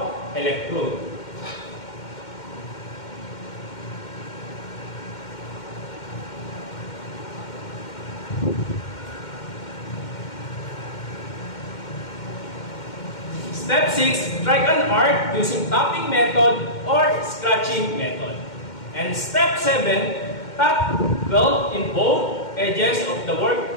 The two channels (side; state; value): right; late; 2.1 ms